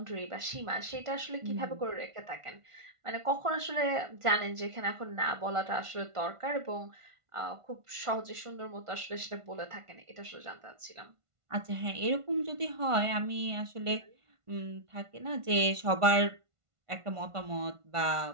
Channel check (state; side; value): late; left; 1.5 ms